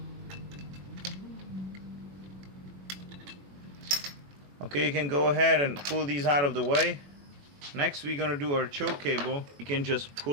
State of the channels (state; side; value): late; left; 21 ms